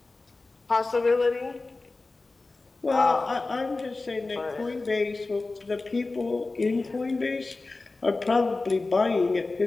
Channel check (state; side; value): quieter; right; 3.5 dB